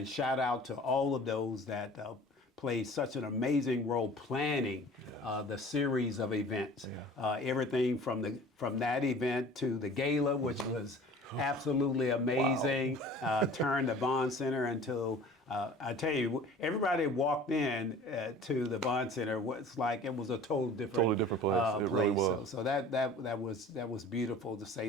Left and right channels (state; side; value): normal; both; correlation 0.45